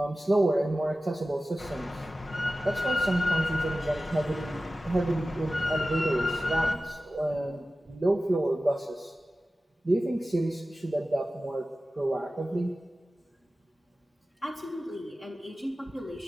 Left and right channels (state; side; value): normal; both; correlation 0.95